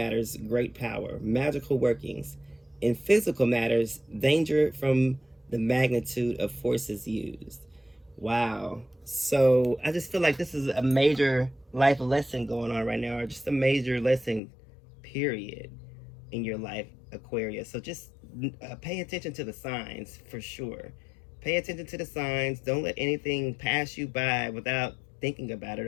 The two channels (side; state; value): right; drops out; at 14.4 s